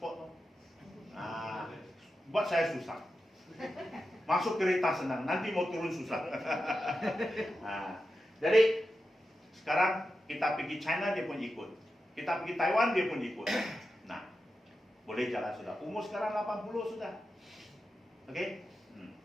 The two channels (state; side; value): normal; both; correlation 0.90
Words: Buat saya susah. Masuk kereta senang, nanti mau turun susah. Jadi sekarang kita pergi China dia pun ikut. Kita pergi Taiwan dia pun ikut. Boleh jalan sudah. Umur sekarang 80 sudah. Okey?